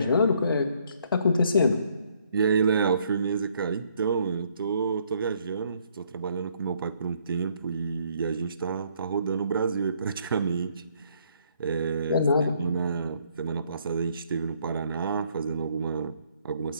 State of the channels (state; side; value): inverted; both; correlation -0.67